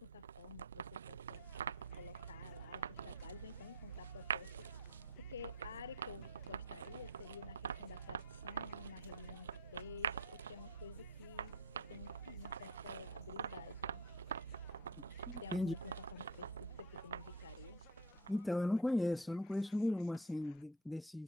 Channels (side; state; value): both; normal; correlation 0.34